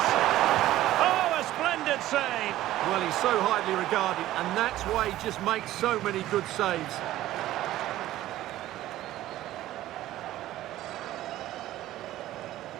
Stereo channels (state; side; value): quieter; left; 14.6 dB